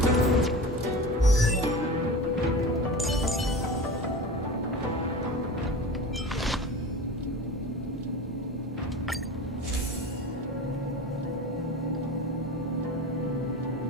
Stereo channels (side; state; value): both; normal; correlation 0.32